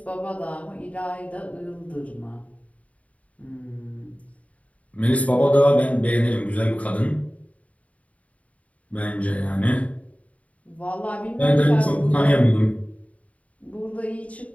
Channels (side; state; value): right; late; 0.067 ms